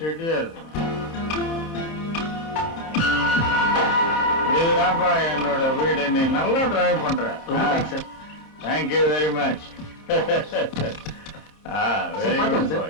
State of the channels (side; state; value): right; late; 30 ms